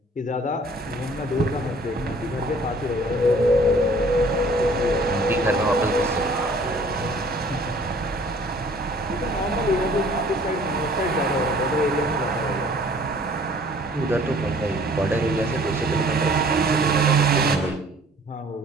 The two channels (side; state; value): both; normal; correlation 0.54